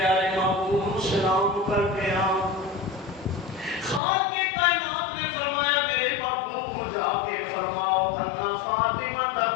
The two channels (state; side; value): drops out; right; at 4.0 s